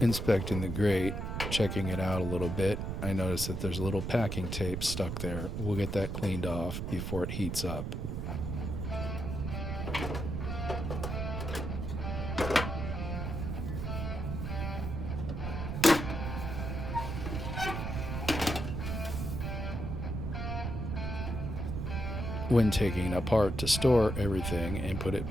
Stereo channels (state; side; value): noise; right; rumble, 3 dB below the sound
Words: Inspecting the grate, checking it out a little bit, I noticed that there's a little packing tape stuck there. We'll get that cleaned off before it heats up. When taking it apart to store everything and put it